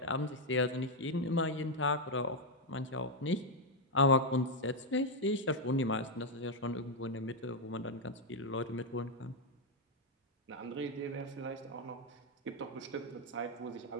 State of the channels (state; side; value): normal; both; correlation 0.01